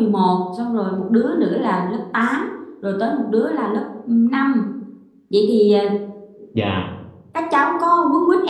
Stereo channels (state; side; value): identical; both; correlation 1.00